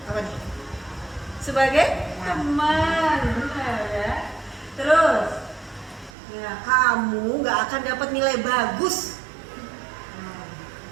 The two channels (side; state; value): left; drops out; at 6.1 s